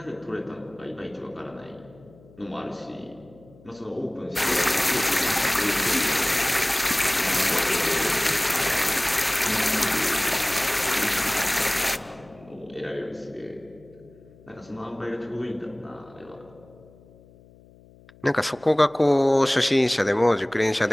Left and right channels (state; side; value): noise; left; hum, 25 dB below the sound